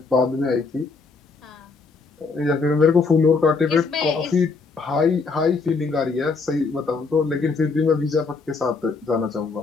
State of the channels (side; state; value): right; quieter; 4.4 dB